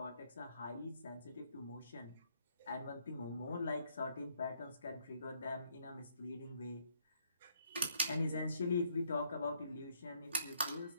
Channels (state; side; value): inverted; both; correlation -0.69